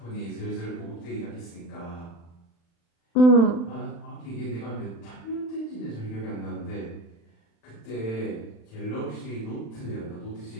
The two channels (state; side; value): late; right; 35 ms